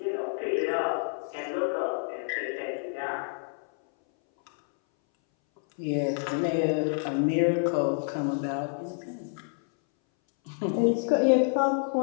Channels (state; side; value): silent; right; 59 dB below the other